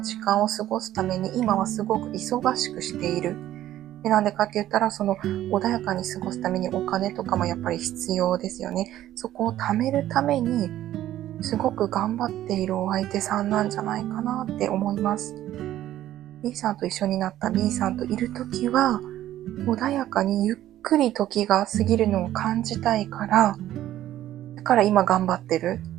時間を過ごすために今はすごく忙しくしている。で、なんでかって言ったら、穏やかに過ごすためにお金とかもやっぱり必要ですよね。そこを貯めるために、すごく頑張っているお相手さんなんじゃないかなって思います。B さんと一緒になった B さんといるときは、穏やかにゆっくり時が過ぎるのを感じたいから、だから今頑張ってる。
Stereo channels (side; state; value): left; quieter; 13.1 dB